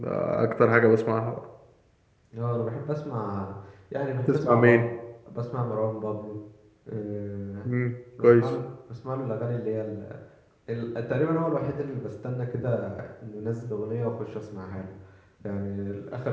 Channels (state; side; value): identical; both; correlation 1.00